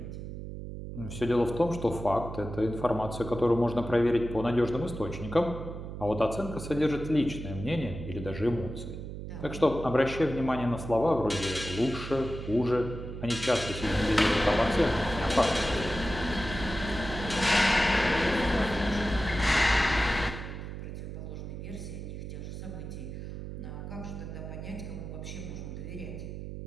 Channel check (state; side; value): noise; right; hum, 8 dB below the sound